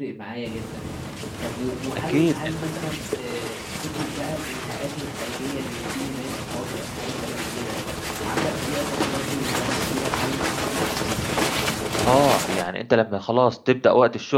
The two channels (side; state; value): both; identical; correlation 1.00